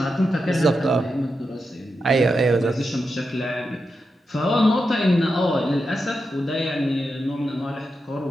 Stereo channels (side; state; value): both; normal; correlation 0.87